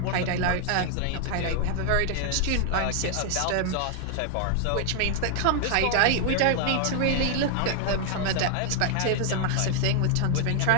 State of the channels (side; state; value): both; different; correlation 0.00